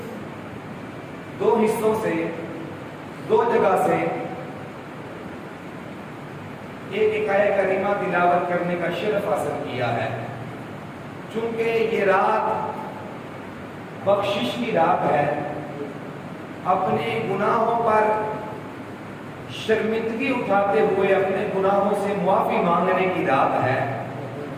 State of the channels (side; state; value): both; identical; correlation 1.00